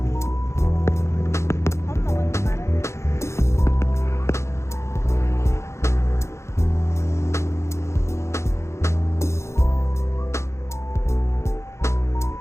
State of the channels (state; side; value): late; right; 0.13 ms